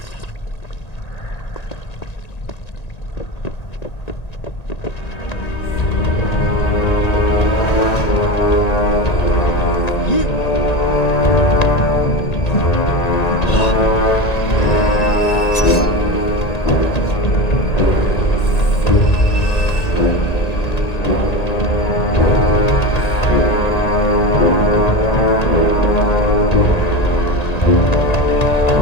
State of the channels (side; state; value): right; late; 1.9 ms